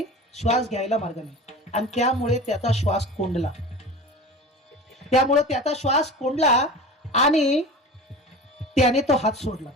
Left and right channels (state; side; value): normal; both; correlation 0.34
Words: श्वास घ्यायला मार्ग नाही, आणि त्यामुळे त्याचा श्वास कोंडला. आणि त्याने तो हात सोडला.